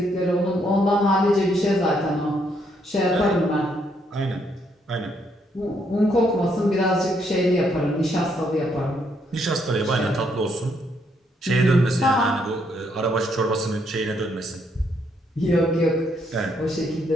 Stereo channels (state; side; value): normal; both; correlation 0.73